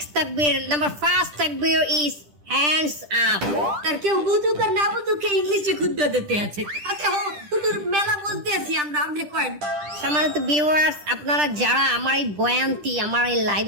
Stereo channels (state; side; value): late; left; 10 ms